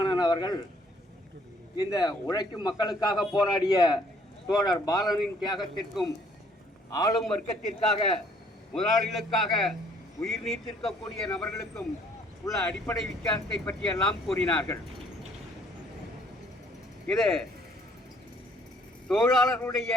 அவர்கள் இந்த உழைக்கும் மக்களுக்காக போராடிய தோழர் பாலனின் தியாகத்திற்கும் ஆளும் வர்க்கத்திற்காக முதலாளிகளுக்காக உயிர் நீத்திருக்கக்கூடிய நபர்களுக்கும் உள்ள அடிப்படை வித்தியாசத்தை பற்றியெல்லாம் கூறினார்கள். இது தொழிலாளர்களுடைய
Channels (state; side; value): normal; both; correlation 0.62